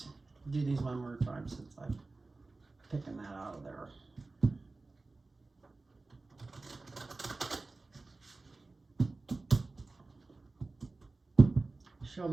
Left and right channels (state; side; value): quieter; left; 3.5 dB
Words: do these one more time since I'm picking that out of there. Show